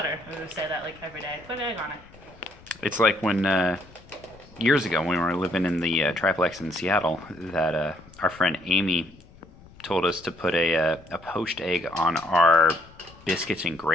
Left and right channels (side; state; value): left; noise; rumble, 23 dB below the sound